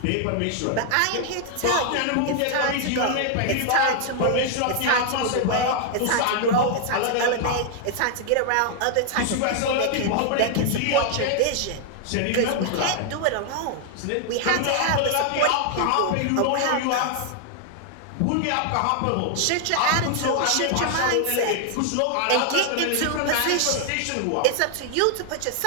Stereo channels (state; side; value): different; both; correlation 0.00